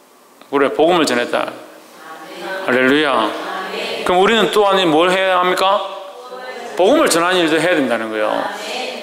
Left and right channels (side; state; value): both; identical; correlation 1.00